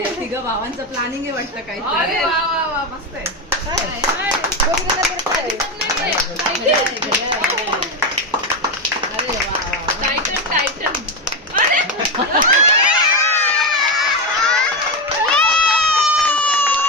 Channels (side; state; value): both; normal; correlation 0.13